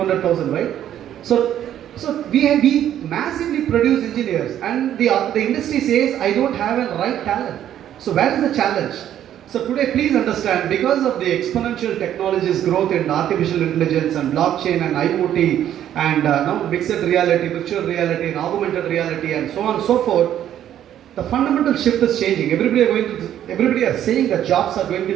right? So we massively produce engineers, and the industry says I don't have a right talent. So where is the challenge? So today, please understand, because of the exponential technologies growth in artificial intelligence and blockchain and IoT and mixed reality, virtual reality and augmented reality and so on and so forth, the fundamental shift is changing. Everybody are saying that jobs are going to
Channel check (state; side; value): quieter; left; 10.9 dB